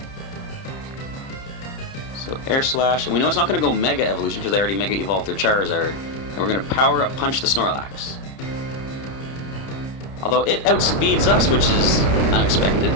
So Air Slash, and we know it's not going to go Mega Evolution because they already Mega Evolved their Charizard. And we're going to Power Up Punch the Snorlax. Although it outspeeds us, which is unexpected.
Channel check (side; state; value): right; late; 31 ms